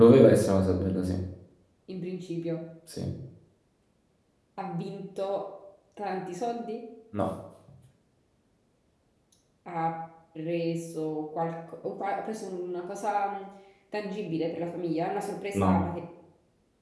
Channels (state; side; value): identical; both; correlation 1.00